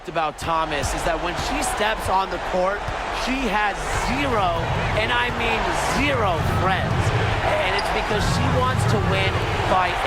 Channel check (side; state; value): both; identical; correlation 1.00